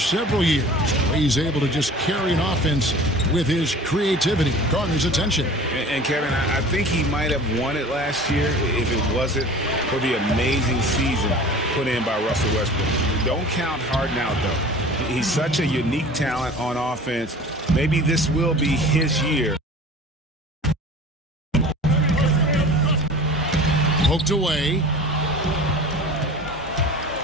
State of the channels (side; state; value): both; normal; correlation 0.41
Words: several years. He's able to just carry an offense with his creativity, garners attention. And Kevin, I think he might have won it last year if it wasn't for the amazing season put in by Russell Westbrook. Don't count Harden out, though. He's such a unique talent on offense. Maybe this will be his year. Poked away.